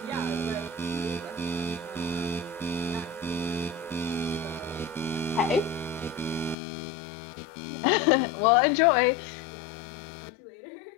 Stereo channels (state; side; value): drops out; right; at 6.6 s